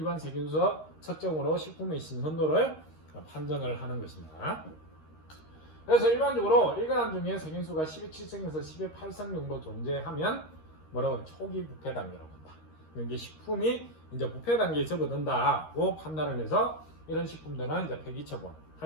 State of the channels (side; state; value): right; late; 13 ms